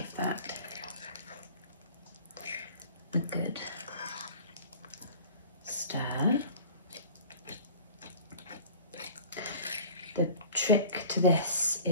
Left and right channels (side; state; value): both; inverted; correlation -0.43